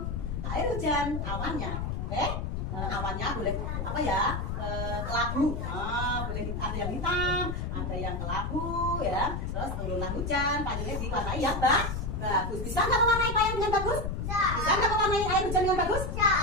air hujan, awannya. Oke? Awannya boleh apa ya? Kelabu. Boleh ada yang hitam, ada yang kelabu ya. Terus turunlah hujan, payungnya diwarnai yang bagus. Bisa nggak mewarnai payung yang bagus? Bisa nggak mewarnai air hujan yang bagus?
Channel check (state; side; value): noise; left; rumble, 3 dB below the sound